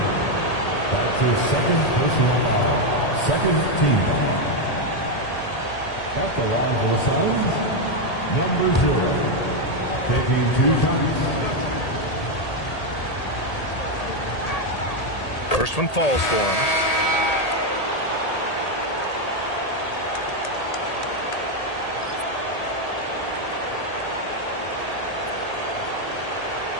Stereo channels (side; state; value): right; late; 1.8 ms